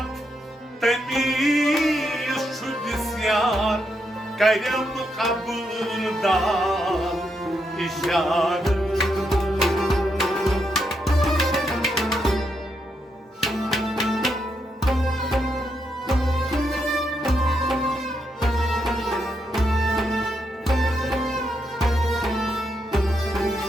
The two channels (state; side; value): normal; both; correlation 0.81